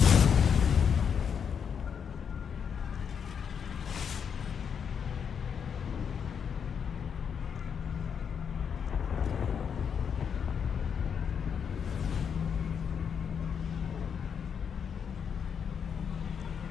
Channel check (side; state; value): right; quieter; 7.2 dB